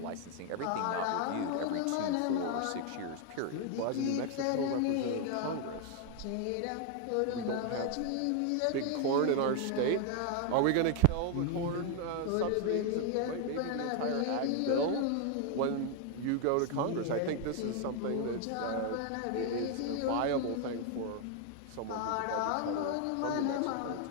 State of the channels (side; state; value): both; different; correlation 0.00